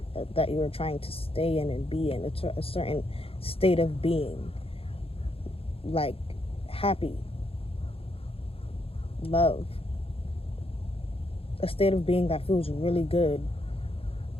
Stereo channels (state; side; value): late; right; 0.27 ms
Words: that you were trying to stay in and be in. It's a certain state of being, like happy, love, a state of being that feels really good.